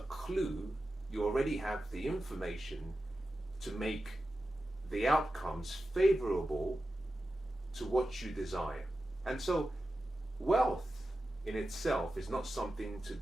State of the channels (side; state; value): both; normal; correlation 0.92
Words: clue, you already have the information to make the outcomes favorable to what you desire. And so, wealth in itself is not something to